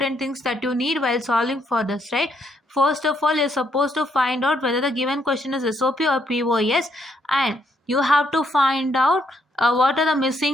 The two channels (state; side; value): normal; both; correlation 0.73